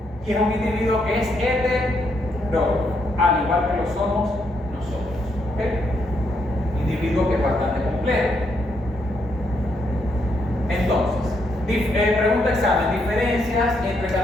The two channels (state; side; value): normal; both; correlation 0.76